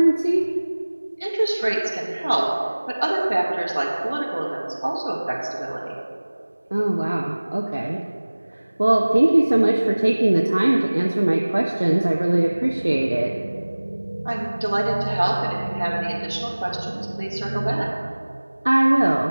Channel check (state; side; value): inverted; both; correlation -1.00